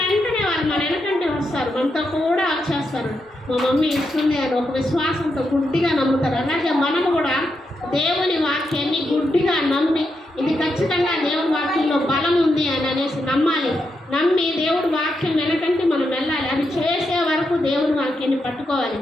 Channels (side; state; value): both; normal; correlation 0.84